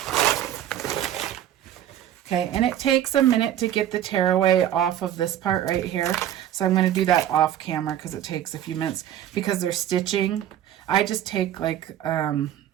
Okay, and it takes a minute to get the tearaway off of this part right here. So I'm going to do that off camera because it takes a few minutes because they're stitching. I just take like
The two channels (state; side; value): quieter; left; 11.3 dB